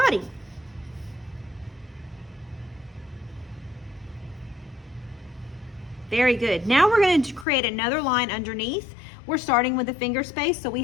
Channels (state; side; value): drops out; right; at 7.5 s